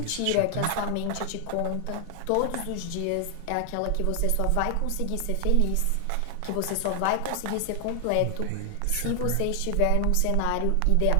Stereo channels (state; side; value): different; both; correlation 0.00